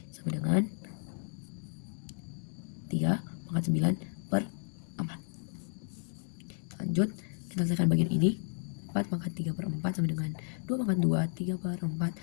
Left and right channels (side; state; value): right; silent; digital silence